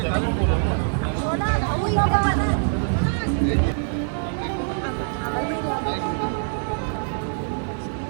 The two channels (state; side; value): silent; left; 63 dB below the other